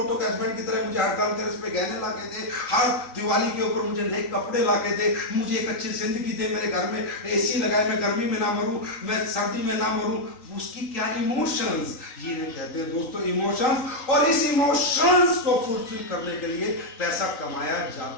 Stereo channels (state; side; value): late; right; 3.9 ms